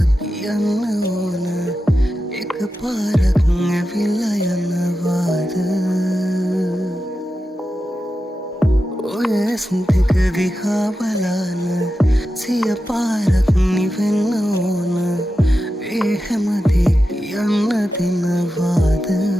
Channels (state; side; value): normal; both; correlation 0.91